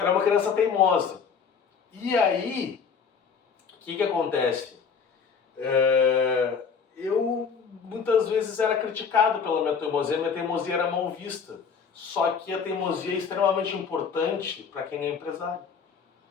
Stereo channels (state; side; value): quieter; right; 6.1 dB